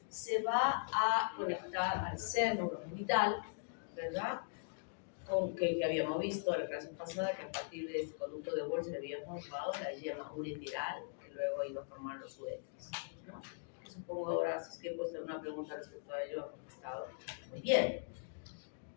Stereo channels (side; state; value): right; silent; digital silence